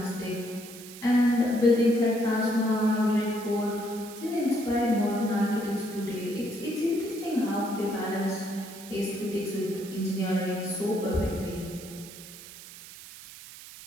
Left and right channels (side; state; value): right; noise; hiss, 16 dB below the sound